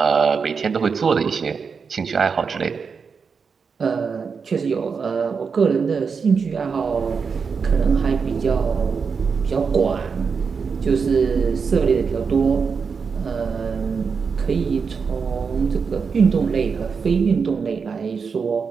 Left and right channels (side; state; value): left; quieter; 5.6 dB